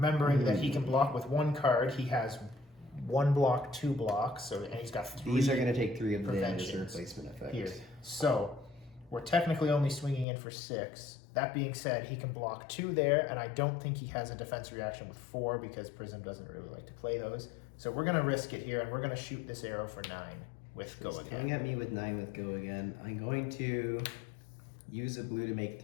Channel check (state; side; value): drops out; right; at 10.2 s